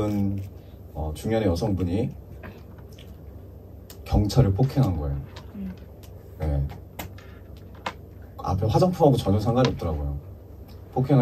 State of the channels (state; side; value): identical; both; correlation 1.00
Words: 중년의 여성분이 경찰을 폭행한 거예요. 네. 앞에 화장품하고 전혀 상관이 없더라고요.